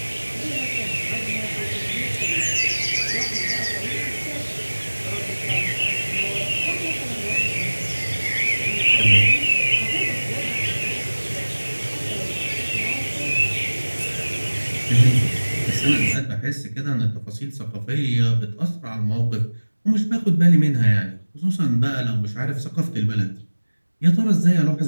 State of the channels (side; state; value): both; inverted; correlation -1.00